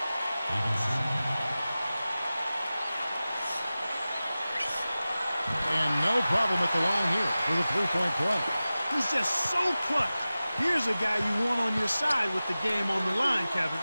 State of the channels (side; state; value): both; inverted; correlation -0.96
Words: And no problem at the line here for the three-point play. He's just so clutch. Here's a guy you want on your side with the game on the line, Kevin.